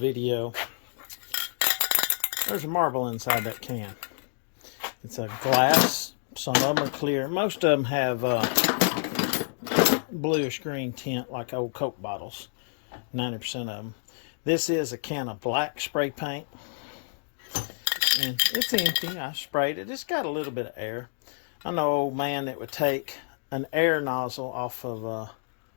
There's a marble inside that can. It's a glass. Some of them are clear. Most of them have bluish green tint like old Coke bottles. 90% of them. This is a can of black spray paint. And it's empty. I sprayed it. It's got a little bit of air. I know an old man that would take an air nozzle off of a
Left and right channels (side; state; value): right; silent; digital silence